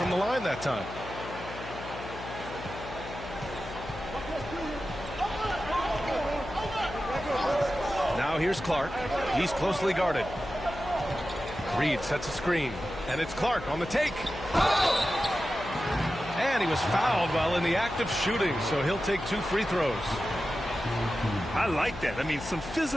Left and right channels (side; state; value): left; noise; hum, 12 dB below the sound